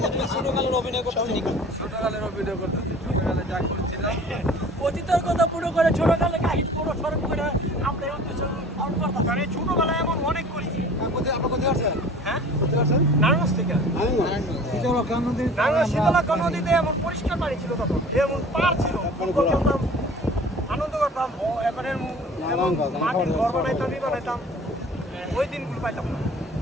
ছোটকালের অভিনয় করতেছেন নাকি? ছোটকালের অভিনয় করতেছি, ছোটকালে যা করছিলাম অতীতের কথা পুরো করে ছোটকালে কাহিনী পুরো স্মরণ করে আমরা এই উদ্দেশ্য পালন করতাম। কারণ এই ছোটবেলায় এমন অনেক করেছি। হ্যাঁ নারায়ণগঞ্জ থেকে নারায়ণগঞ্জ শীতলক্ষা নদীতে এমন পরিষ্কার পানি ছিল, তখন এমন পার ছিল, ফুটবল খেলতাম, আনন্দ করতাম। এবারে এমন মাটির ঘর বানাইতাম, ওই দিনগুলো পাইতাম না।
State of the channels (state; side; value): normal; both; correlation 0.45